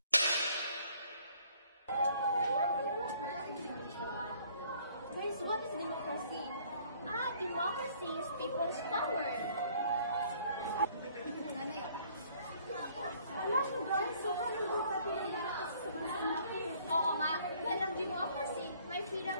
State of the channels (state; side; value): inverted; both; correlation -0.60